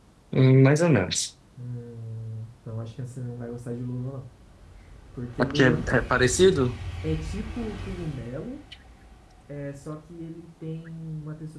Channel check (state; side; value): identical; both; correlation 1.00